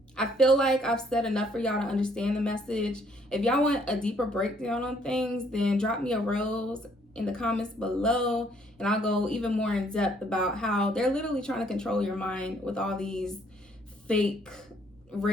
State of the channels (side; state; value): both; normal; correlation 0.65